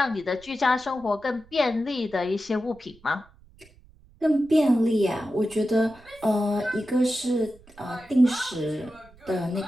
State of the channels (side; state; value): right; noise; rumble, 26 dB below the sound